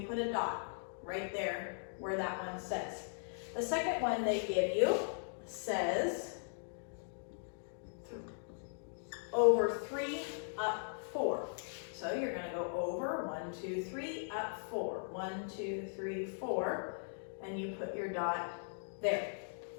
put a dot right there where that one says. The second one they give you says over 3, up 4. So you're going to go over 1, 2, 3, up 4. 1, 2, 3, 4, and you put your dot there.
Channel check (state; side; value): silent; right; digital silence